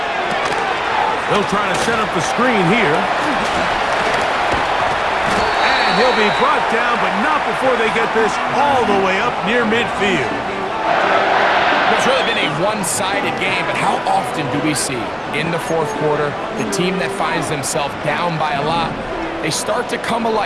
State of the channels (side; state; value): both; identical; correlation 1.00